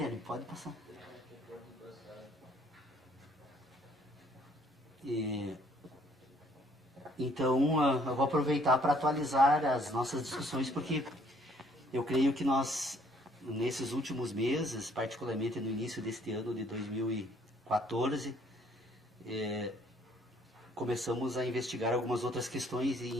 pode passar. Então, eu vou aproveitar para atualizar as nossas discussões, porque eu creio que nós, nesses últimos meses, particularmente no início deste ano de 2014, começamos a investigar algumas outras questões, e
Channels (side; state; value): both; normal; correlation 0.62